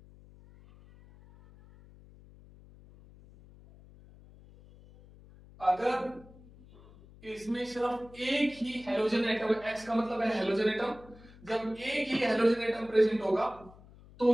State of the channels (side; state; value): left; noise; hum, 22 dB below the sound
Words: अगर इसमें सिर्फ एक ही हेलोजन एटम, X का मतलब है हेलोजन एटम, जब एक ही हेलोजन एटम प्रेजेंट होगा तो